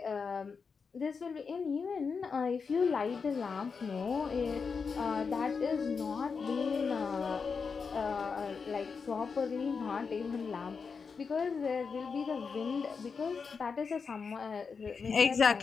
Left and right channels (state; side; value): quieter; right; 5.4 dB